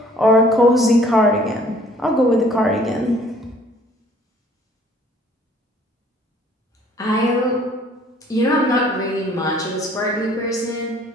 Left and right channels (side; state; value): both; normal; correlation 0.57